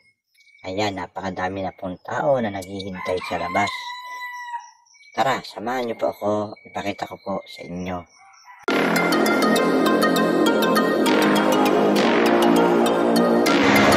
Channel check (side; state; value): both; identical; correlation 1.00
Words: Ayan, napakadami na pong tao na naghihintay sa labas. Tara, samahan niyo po ako, ipakita ko po sa inyo